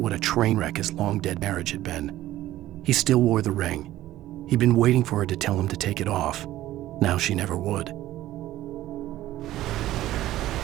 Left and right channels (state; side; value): quieter; left; 14.8 dB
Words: a train wreck his long-dead marriage had been. He still wore the ring. He'd been waiting for her to tell him to take it off. Now she never would.